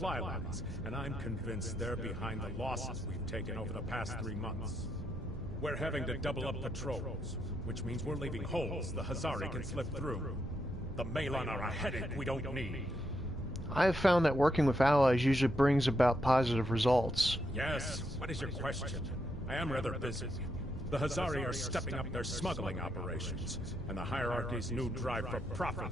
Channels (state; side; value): normal; both; correlation 0.80